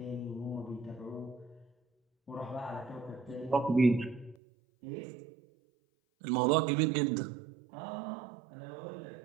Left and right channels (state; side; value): drops out; left; at 4.4 s